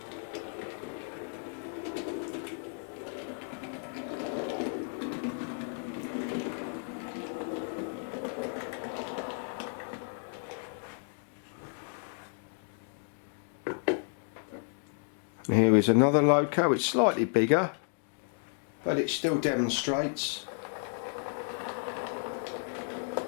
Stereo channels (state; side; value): silent; right; 56 dB below the other